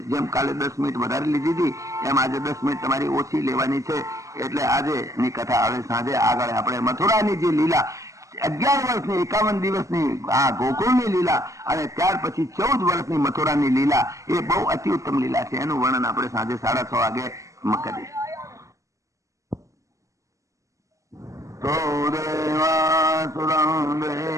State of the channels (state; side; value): late; left; 0.15 ms